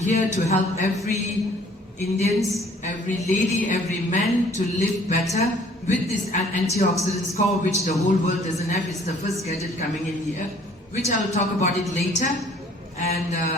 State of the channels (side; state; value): both; normal; correlation 0.56